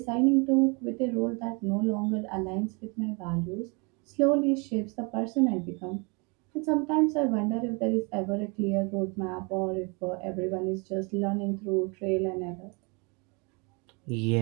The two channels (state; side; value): quieter; left; 31.1 dB